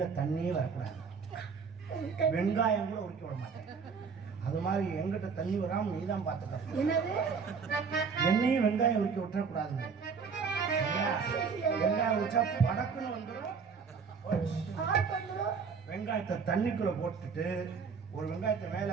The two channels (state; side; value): quieter; left; 5.7 dB